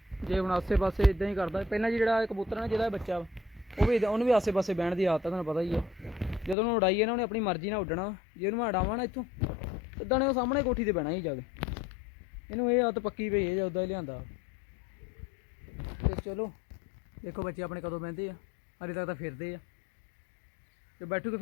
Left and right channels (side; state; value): right; drops out; at 6.6 s